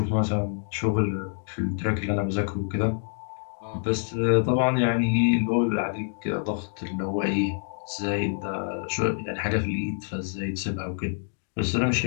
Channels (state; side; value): silent; right; digital silence